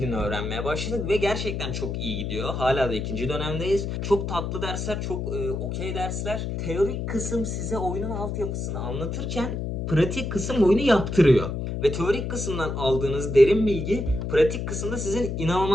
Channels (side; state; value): left; noise; hum, 3 dB below the sound